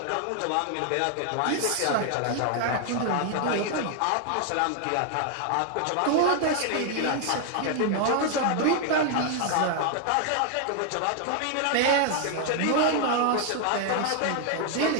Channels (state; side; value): different; both; correlation 0.00